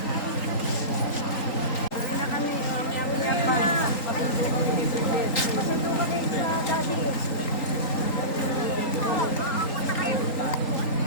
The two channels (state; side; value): late; right; 3.9 ms